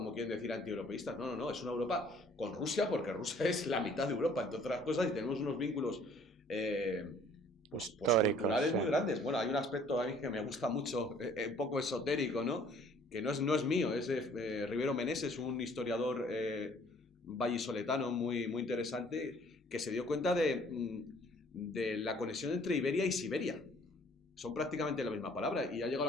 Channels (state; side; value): normal; both; correlation 0.57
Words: quieren decir antieuropeístas. No, es una Europa con Rusia, porque Rusia es la mitad de Europa, entre otras cosas, y tenemos unos vínculos pues Históricos, culturales sí. muy grandes. Bueno, hay un aspecto a mí que me gusta mucho, un poco esotérico, ¿no? Que no es mío, es de Rivero Meneses, un historiador vallisoletano muy, muy interesante, que se dio cuenta de la conexión entre Iberia y Siberia. Son prácticamente la misma palabra y ha llegado